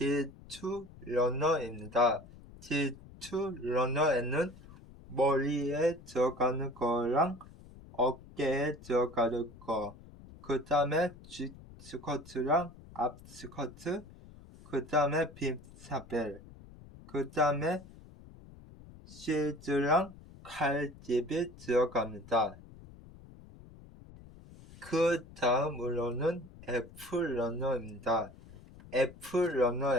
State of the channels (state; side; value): noise; left; rumble, 19 dB below the sound